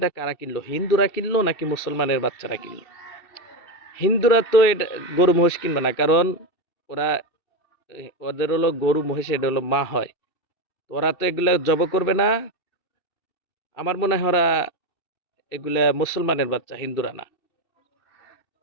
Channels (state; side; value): late; right; 2.6 ms